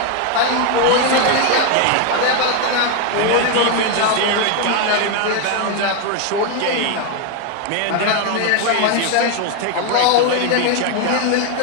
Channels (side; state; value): both; different; correlation 0.01